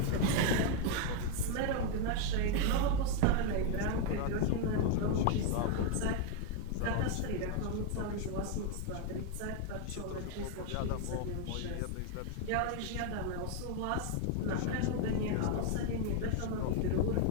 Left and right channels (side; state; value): both; different; correlation 0.01